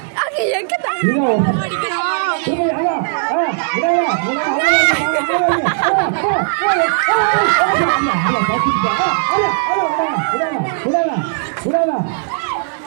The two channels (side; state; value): left; silent; digital silence